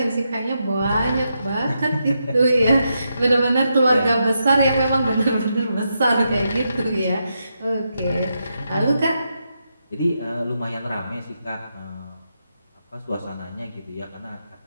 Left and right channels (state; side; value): inverted; both; correlation -0.83